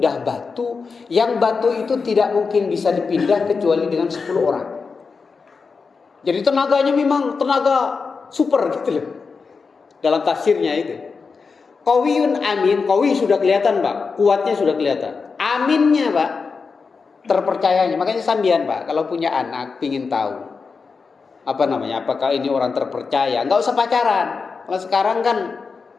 batu, yang batu itu tidak mungkin bisa dipindah kecuali dengan 10 orang. Jadi tenaganya memang tenaga super gitu loh. Dalam tafsirnya itu. Qawiyun amin, qawi sudah kelihatan Pak, kuatnya sudah kelihatan. Aminnya Pak, terpercayanya. Makanya sambian Pak, kalau punya anak pingin tahu apakah ini orang terpercaya, nggak usah pacaran. Kalau sekarang kan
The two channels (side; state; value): right; quieter; 4.9 dB